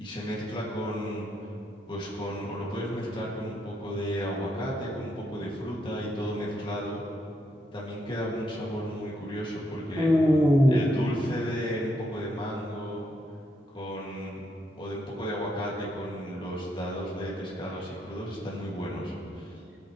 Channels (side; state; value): both; normal; correlation 0.77